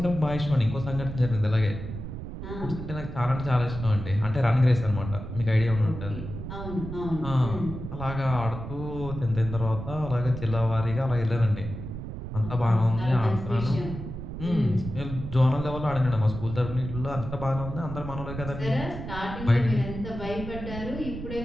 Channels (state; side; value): noise; right; rumble, 8 dB below the sound